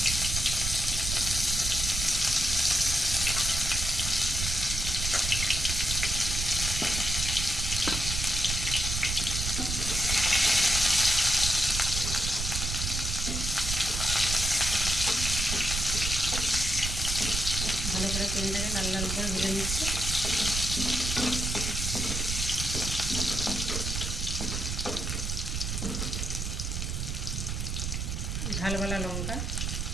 ভালো করে পেনটাকে লাল লাল করে ভেজে নিচ্ছি। ঝালবালা লঙ্কা,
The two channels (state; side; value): noise; right; rumble, 2 dB below the sound